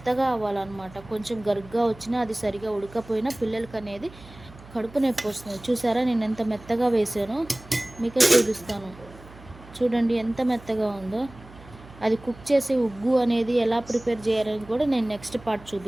అవ్వాలన్నమాట. కొంచెం గరుగ్గా వచ్చినా, అది సరిగా ఉడకపోయినా పిల్లలకి అనేది కడుపు నొప్పి వస్తుంది. చూసారా, నేను ఎంత మెత్తగా వేసానో మీకే చూపిస్తాను. చూడండి ఎంత మెత్తగా ఉందో. అది కుక్ చేసి ఉగ్గు అనేది ఎలా ప్రిపేర్ చేయాలని కూడా నేను నెక్స్ట్ పార్ట్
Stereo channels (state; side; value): noise; right; hum, 20 dB below the sound